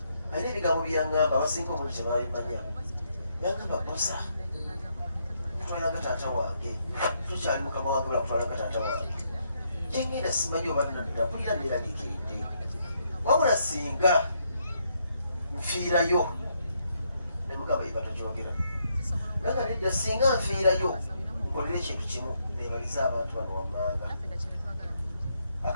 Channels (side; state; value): both; inverted; correlation -0.75